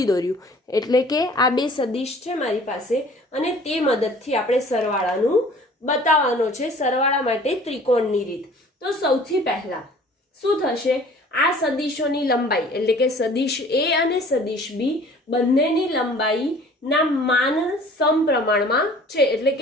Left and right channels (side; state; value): both; normal; correlation 0.50